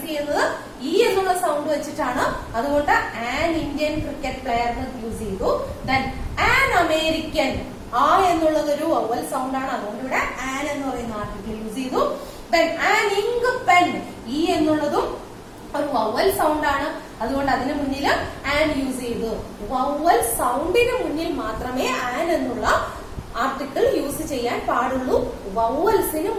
ചെയ്യുന്നത് ഇ എന്നുള്ള സൗണ്ട് വെച്ചിട്ടാണ്. അതുകൊണ്ട് an Indian cricket player use ചെയ്തു. Then an American. ആ എന്നുള്ളത് ഒരു വവ്വൽ സൗണ്ട് ആണ്. അതുകൊണ്ട് ഇവിടെ ആൻ എന്ന് പറയുന്ന ആർട്ടിക്കിൾ യൂസ് ചെയ്തു. Then an ink pen. E എന്നുള്ളതും ഒരു വവ്വൽ സൗണ്ട് ആണ്. അതുകൊണ്ട് അതിന് മുന്നിൽ ആൻ യൂസ് ചെയ്തു. വവ്വൽ സൗണ്ടിന് മുന്നിൽ മാത്രമേ ആൻ എന്നുള്ള ആർട്ടിക്കിൾ യൂസ് ചെയ്യാൻ പാടുള്ളൂ, വവ്വൽസിന്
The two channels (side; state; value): both; identical; correlation 1.00